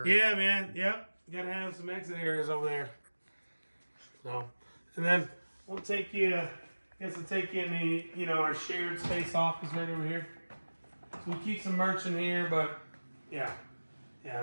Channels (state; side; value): inverted; both; correlation -1.00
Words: Yeah, man. Yep. You gotta have some exit areas over there. So, and then we'll take you. I guess we'll take you in the, you know, our shared space office right over here. So we keep some merch in here, but yeah. I